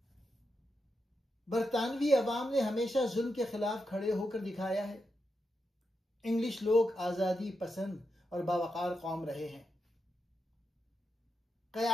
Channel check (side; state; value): both; normal; correlation 0.86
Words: बरतानवी अवाम ने हमेशा जुल्म के खिलाफ खड़े होकर दिखाया है। इंग्लिश लोग आज़ादी पसंद और बावकार कौम रहे हैं।